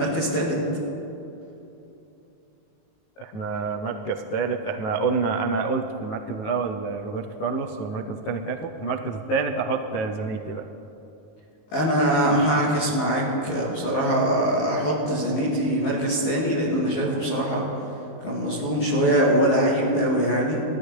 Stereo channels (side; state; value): right; late; 19 ms